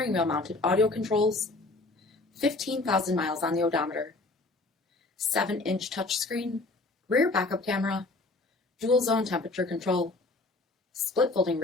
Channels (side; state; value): right; quieter; 3.1 dB